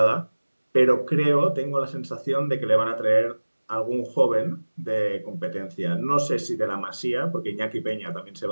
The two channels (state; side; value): inverted; both; correlation -1.00